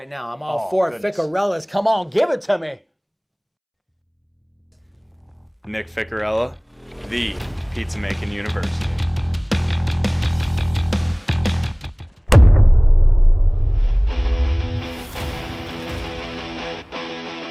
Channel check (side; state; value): both; identical; correlation 1.00